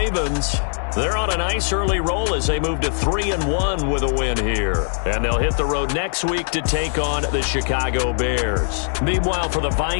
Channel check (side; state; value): right; silent; digital silence